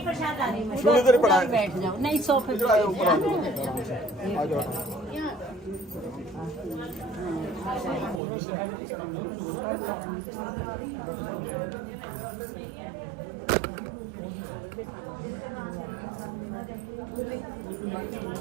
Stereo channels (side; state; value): left; drops out; at 8.2 s